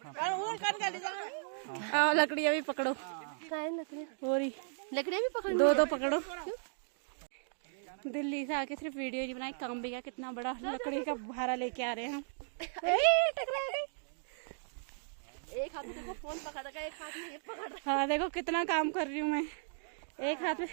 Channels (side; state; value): left; silent; digital silence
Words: कर और कर के ले जाओ। लकड़ियाँ भी पकड़ो, लकड़ी लकड़ी भी पकड़ो, दो पकड़ो। दिल्ली से आके सिर्फ वीडियो नहीं बनाई, काम भी किया। कितना बड़ा लकड़ी का भारा लेके आ रहे हैं हम। टकरा गई। एक हाथ में फोन पकड़ रखा है, एक हाथ में ये पकड़ रखा हाँ देखो कितना काम कर रही हूँ मैं, एक हाथ में